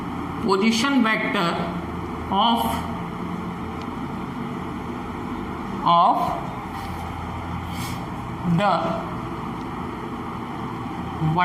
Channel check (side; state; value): both; identical; correlation 1.00